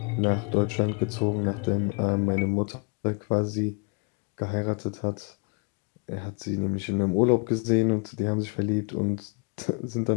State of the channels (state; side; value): quieter; right; 35.2 dB